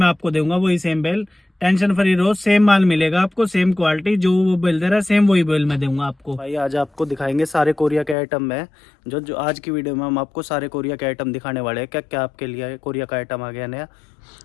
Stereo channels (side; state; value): right; drops out; at 8.2 s